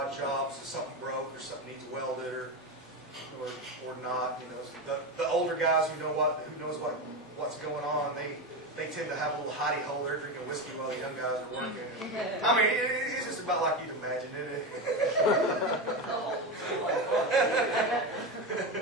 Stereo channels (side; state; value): both; normal; correlation 0.17